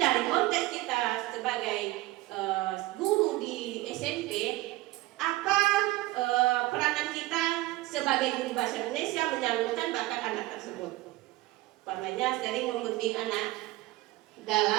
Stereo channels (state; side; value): quieter; left; 18.8 dB